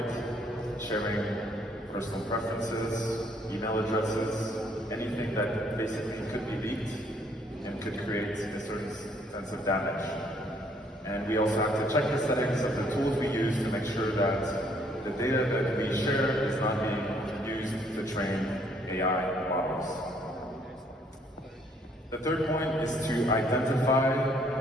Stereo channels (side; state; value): both; normal; correlation 0.65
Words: sharing personal preferences, email addresses, anything that basically could be leaked and could create a certain sense of damage. And we also have to check the settings of the tools we use to make sure that the data that we share is not being used to train AI models. The third point is to identify